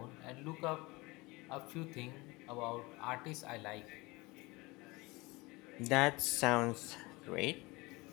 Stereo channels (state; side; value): quieter; right; 23.6 dB